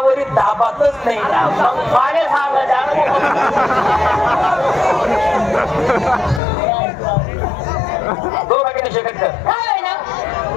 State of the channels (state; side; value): drops out; right; at 6.4 s